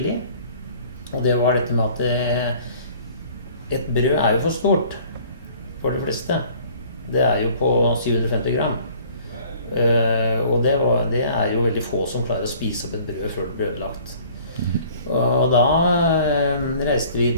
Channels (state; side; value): inverted; both; correlation -0.53